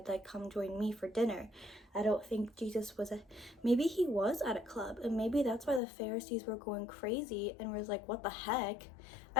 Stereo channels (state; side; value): drops out; right; at 5.8 s